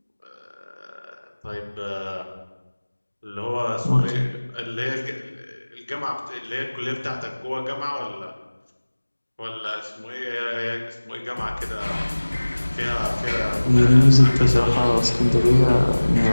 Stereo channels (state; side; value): inverted; both; correlation -1.00